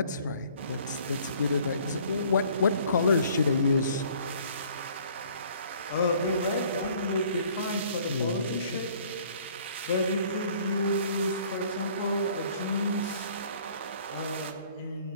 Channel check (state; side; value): inverted; both; correlation -0.56